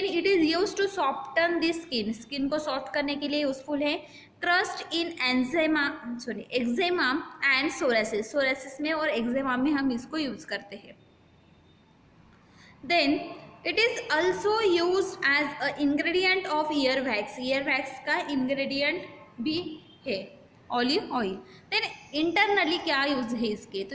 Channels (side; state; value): both; identical; correlation 1.00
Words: it is use to soften the skin को सॉफ्ट करने के लिए यूजफुल है। Trust in eczema and psoriasis में और एक्जेमा में हम इसको यूज करते हैं। Then it is also used as a ingredient of ear wax. Ear wax का ingredient भी है ऑलिव ऑयल। देन इंटरनली क्या यूज है इसके, तो